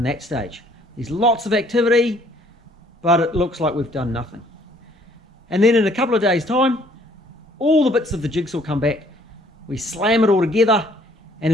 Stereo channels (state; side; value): normal; both; correlation 0.61